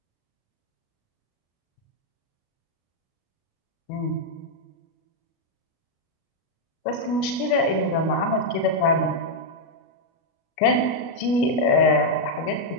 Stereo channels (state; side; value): late; right; 37 ms